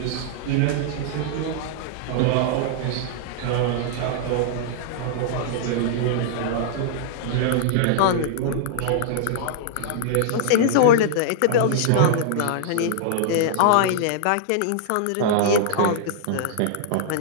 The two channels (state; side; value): different; both; correlation -0.01